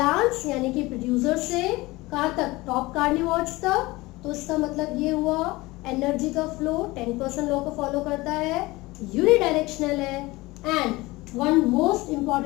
यानी कि प्रोड्यूसर से कहाँ तक, टॉप कार्निवोर्स तक। तो इसका मतलब ये हुआ एनर्जी का फ्लो 10% लॉ को फॉलो करता है, यूनिडायरेक्शनल है। And one most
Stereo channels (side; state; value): right; quieter; 21.0 dB